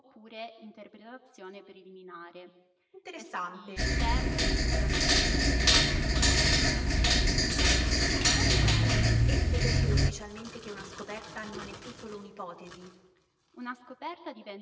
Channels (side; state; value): both; identical; correlation 1.00